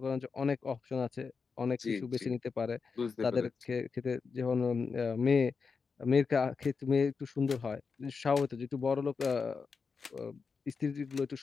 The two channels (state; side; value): quieter; right; 5.2 dB